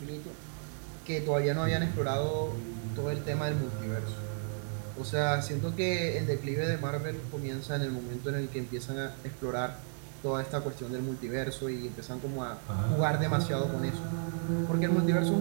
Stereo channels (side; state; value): left; silent; 56 dB below the other